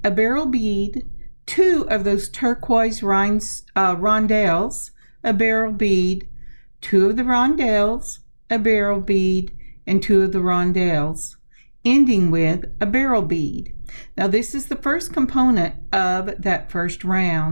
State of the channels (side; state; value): both; inverted; correlation -1.00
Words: a beryl bead, two of those turquoise rondelles, a beryl bead, two of the rondelles, a beryl bead, and two of the rondelles, ending with a beryl bead. Now this is the first component of that first